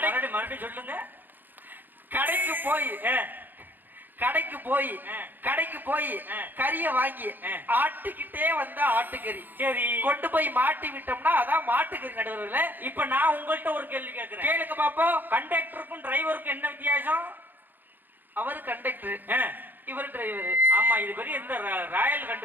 மறுபடியும் சொல்லுங்க. கடைக்கு போய் கறிய வாங்கி ஆட்டிக்கிட்டே வந்தா ஆட்டுக்கறி. சரி, கொண்டு போய் மாட்டி விட்டோம்னா அதான் மாட்டுக்கறி. நடுவர்களே இப்ப நான் உங்கள்கிட்ட ஒரு கேள்வி கேட்கிறேன், கேளுங்க பாப்போம். கண்டக்டருக்கும் டிரைவருக்கும் என்ன வித்தியாசம்? அவரு கண்டக்டர், இவர் டிரைவர். ஆமா, இது பெரிய இந்த ராயல்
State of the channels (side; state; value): left; late; 0.089 ms